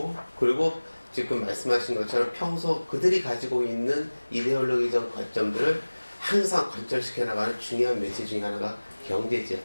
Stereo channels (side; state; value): both; inverted; correlation -1.00